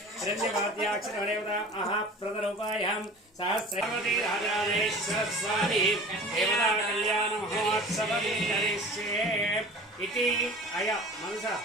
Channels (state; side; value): normal; both; correlation 0.40